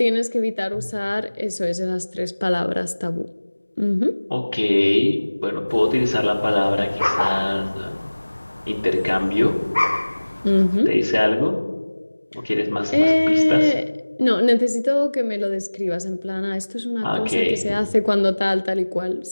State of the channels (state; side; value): inverted; both; correlation -1.00